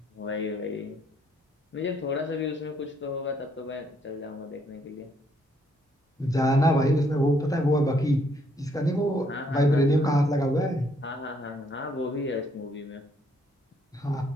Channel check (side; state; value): both; normal; correlation 0.70